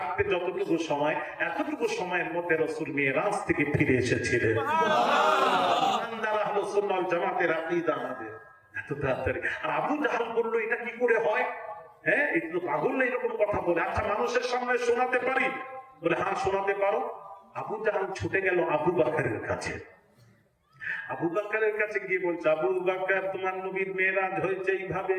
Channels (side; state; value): both; identical; correlation 1.00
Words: যতটুকু সময়, এতটুকু সময়ের মধ্যে রাসূল মেরাজ থেকে ফিরে এসেছিলেন। ইমানদার আহলে সুন্নাত ওয়াল জামাতের আকীদা আমাদের এত তাড়াতাড়ি। আর আবু জাহাল বলল, এটা কি করে হয়? হ্যাঁ, একটু পাগল না এরকম কথা বলে। আচ্ছা, মানুষের সামনে শোনাতে পারি? বলে, হ্যাঁ শোনাতে পারো। আবু জাহাল ছুটে গেল আবু বকরের কাছে। আবু বকরের কাছে গিয়ে বলছে, আবু বকর তোমার নবীর মেরাজ হয়েছে